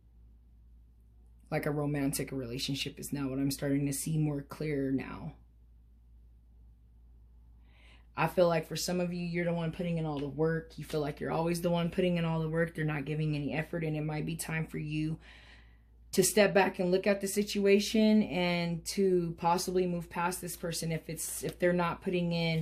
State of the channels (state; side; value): identical; both; correlation 1.00